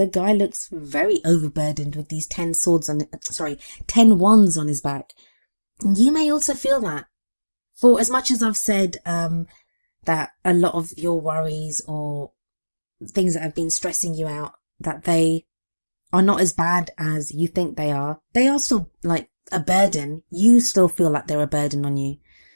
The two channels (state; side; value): inverted; both; correlation -1.00